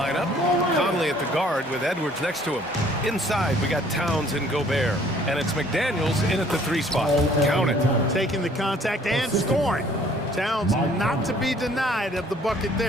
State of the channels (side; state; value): both; normal; correlation 0.58